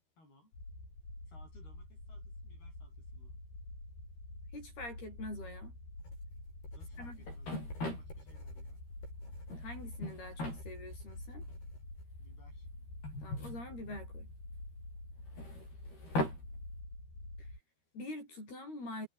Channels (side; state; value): right; late; 13 ms